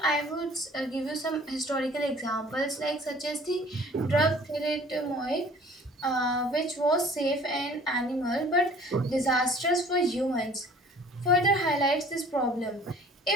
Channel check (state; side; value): normal; both; correlation 0.51